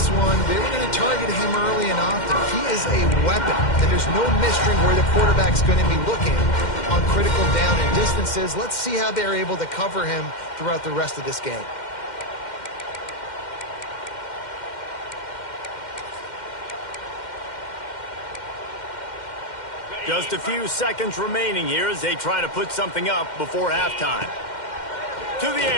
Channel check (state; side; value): late; right; 2.1 ms